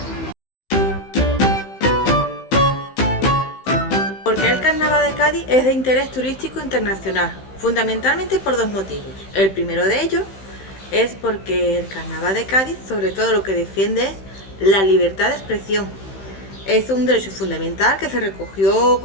¿Por qué el carnaval de Cádiz es de interés turístico internacional? Fundamentalmente por dos motivos. El primero de ellos es porque el carnaval de Cádiz, sobre todo lo que defiende es la libertad de expresión. Es un derecho fundamental que se recogió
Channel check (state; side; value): late; right; 15 ms